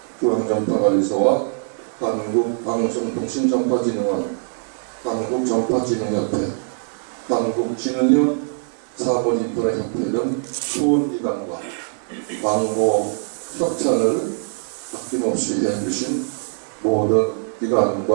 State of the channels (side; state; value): left; silent; digital silence